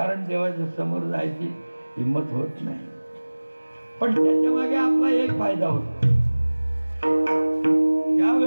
देवाच्या समोर जायची हिंमत होत नाही. पण त्याच्या मागे आपला एक फायदा होतो, त्या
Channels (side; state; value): both; inverted; correlation -1.00